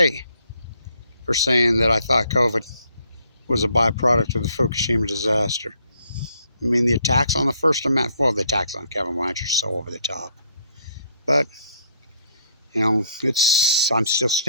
for saying that I thought COVID was a byproduct of the Fukushima disaster. I mean, the attacks on the First Amendment, well, the attacks on Kevin Blanch are so over the top. But, you know, I'm still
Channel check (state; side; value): inverted; both; correlation -0.67